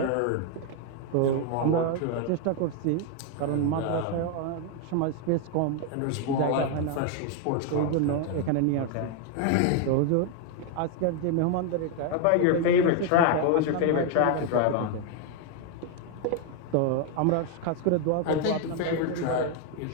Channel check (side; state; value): both; different; correlation 0.01